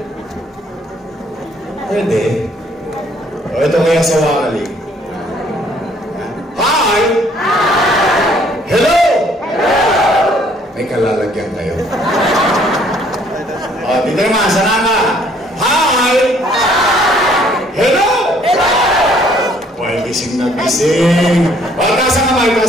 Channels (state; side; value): normal; both; correlation 0.62